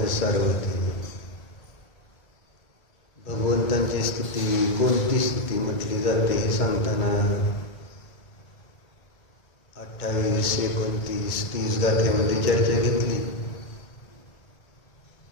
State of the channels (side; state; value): right; late; 2.2 ms